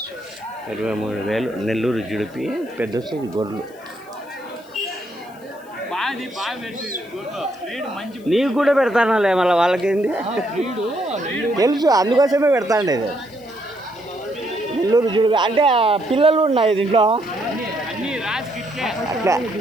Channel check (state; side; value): noise; left; hiss, 28 dB below the sound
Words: 23,000. నెల్లూరు జుడిపి పెద్ద సైజు గొర్రెలు. నీకు కూడా పెడతానాలే, మళ్ళీ వాళ్ళకేంది తెలుసు, అందుకోసమే పెడతాండేది. నెల్లూరు జుడిపి అంటే పిల్లలు ఉన్నాయి దీంట్లో అట్లా.